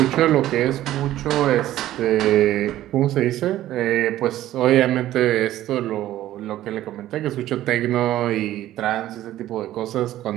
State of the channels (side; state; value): left; quieter; 13.9 dB